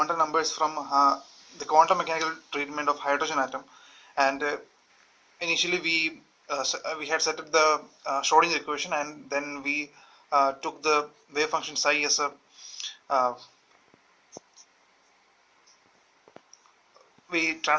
numbers from the quantum mechanical treatment of hydrogen atom, and initially we had set up the Schrodinger equation, and then we took the wave function psi as a we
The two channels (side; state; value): both; identical; correlation 1.00